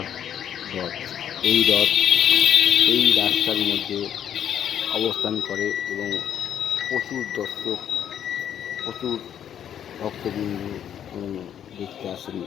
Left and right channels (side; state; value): right; quieter; 9.6 dB